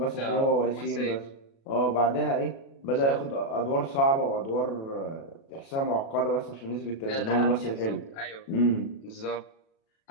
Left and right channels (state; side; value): late; right; 36 ms